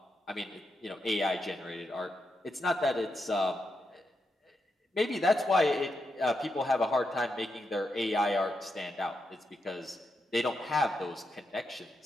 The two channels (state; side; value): normal; both; correlation 0.84